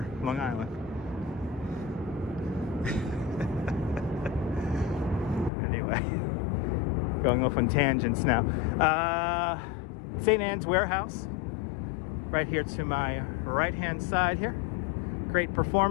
Long Island. Anyway, going off on tangents now. St. Anne's Warehouse, right here to my right-hand side here. Great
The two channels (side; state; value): right; drops out; at 5.5 s